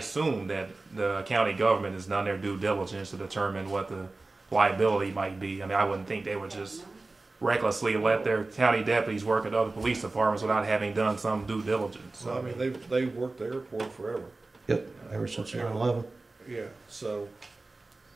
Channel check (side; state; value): left; quieter; 3.3 dB